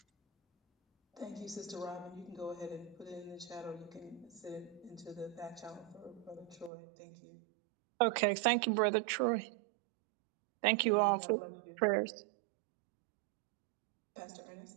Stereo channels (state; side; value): drops out; left; at 6.7 s